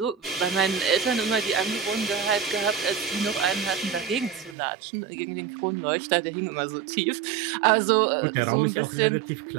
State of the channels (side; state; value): left; drops out; at 4.5 s